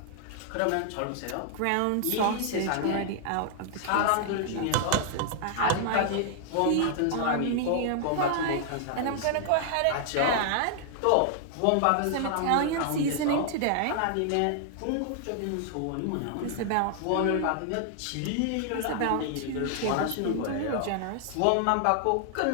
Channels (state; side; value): different; both; correlation 0.00